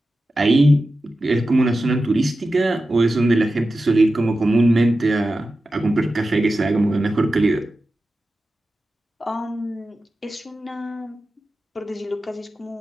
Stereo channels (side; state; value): both; normal; correlation 0.93